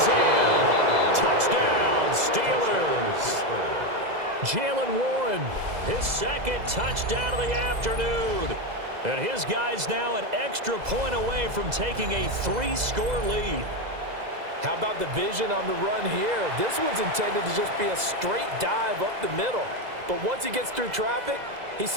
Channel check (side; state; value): left; late; 2.0 ms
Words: in. Touchdown, Steelers. Jalen Warren, his second touchdown of the afternoon. And his guys now an extra point away from taking a 3-score lead. How about the vision on the run here? This one's intended to just be a straight dive up the middle. But once he gets through traffic, he